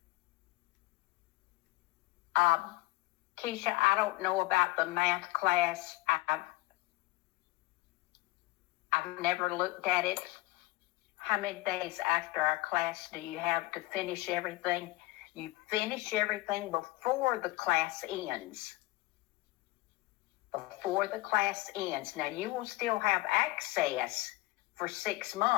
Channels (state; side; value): quieter; right; 20.8 dB